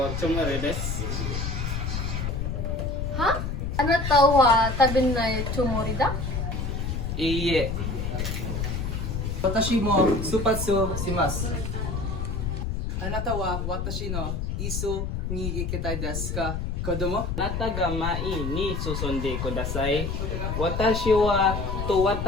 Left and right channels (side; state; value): left; noise; rumble, 2 dB below the sound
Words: くつもりです。は？あなたは食べないつもりだ？いいえ。私も出発します。あなたは私の一緒に行きたいですか、子供？あなたが前に進んでください。私はと